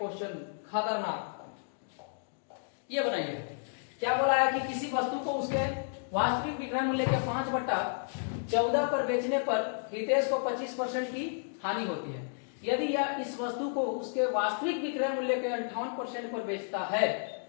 खतरनाक, ये बनाइए। क्या बोला है कि किसी वस्तु को उसके वास्तविक विक्रय मूल्य के 5/14 पर बेचने पर हितेश को 25% की हानि होती है। यदि यह इस वस्तु को उसके वास्तविक विक्रय मूल्य के 58% पर बेचता है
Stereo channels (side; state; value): right; silent; digital silence